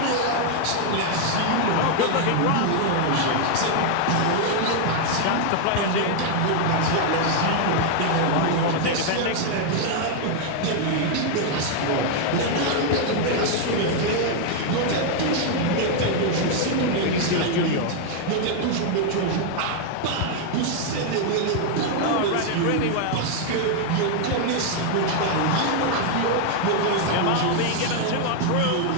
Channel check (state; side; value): different; both; correlation 0.00